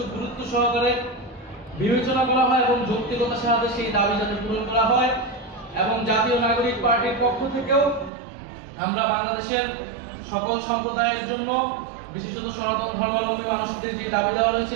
গুরুত্ব সহকারে বিবেচনা করা হয় এবং যৌক্তিকতার সাথে সেই দাবি যাতে পূরণ করা হয়। এবং জাতীয় নাগরিক পার্টির পক্ষ থেকেও আমরা বাংলাদেশের সকল সম্প্রদায়ের জন্য, বিশেষত সনাতন ধর্মাবলম্বী মানুষদের যে দাবি দেওয়া রয়েছে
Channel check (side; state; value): left; drops out; at 8.1 s